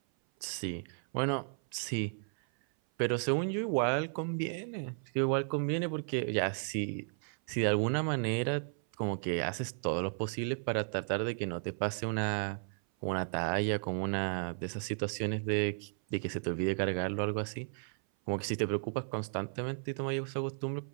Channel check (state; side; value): silent; left; 55 dB below the other